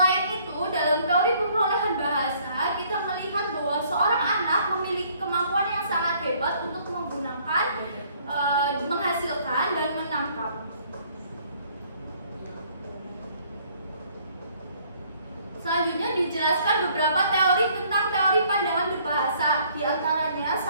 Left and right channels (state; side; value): inverted; both; correlation -0.61